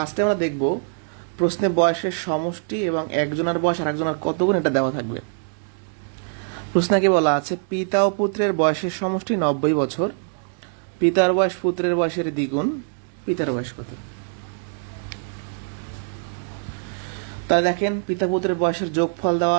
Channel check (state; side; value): silent; left; digital silence